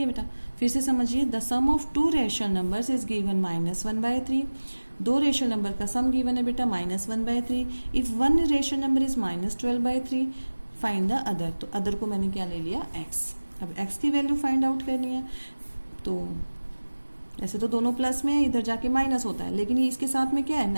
बेटा, फिर से समझिए, the sum of two rational numbers is given -1/3। दो रेशनल नंबर का सम गिवन है बेटा -1/3। If one rational number is -12/3 find the other. तो अदर को मैंने क्या ले लिया, x। अब x की वैल्यू फाइंड आउट करनी है। तो ऐसे तो दोनों प्लस में है, इधर जाके माइनस होता है, लेकिन ये इसके साथ में क्या है,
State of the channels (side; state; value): both; inverted; correlation -1.00